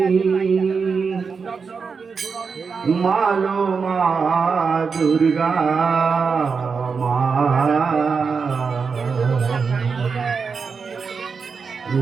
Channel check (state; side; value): quieter; left; 5.3 dB